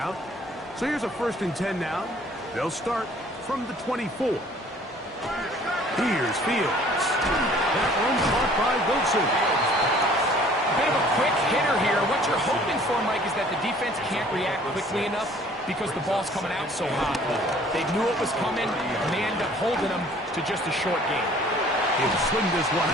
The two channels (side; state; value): both; normal; correlation 0.54